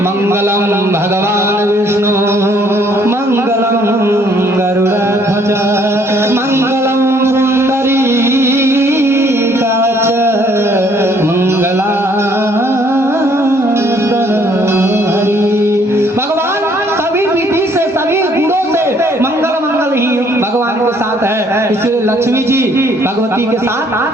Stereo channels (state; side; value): normal; both; correlation 0.63